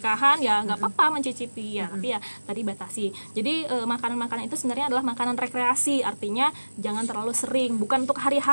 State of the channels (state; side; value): inverted; both; correlation -1.00